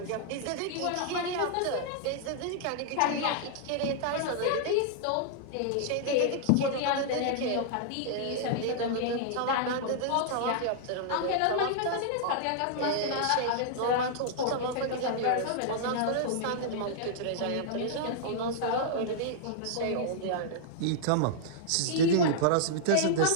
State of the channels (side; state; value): both; different; correlation -0.01